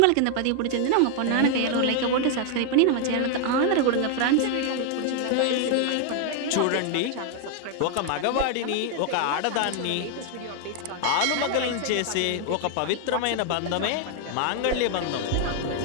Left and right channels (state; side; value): different; both; correlation 0.00